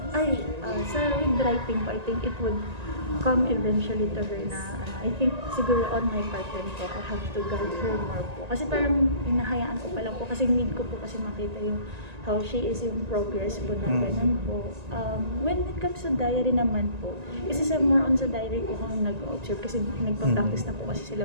with writing po, I think it would come eventually to her na I think siguro on my part din po, I have to guide her more po. Kasi parang hinahayaan ko pa lang po kasi need ko po kasi makita yung how she is yung progress po na ganun po. When it comes to diary naman po, kasi more on sa diary po kung nag-observe kasi nagpa-practice na po kasi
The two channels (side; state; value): left; late; 1.9 ms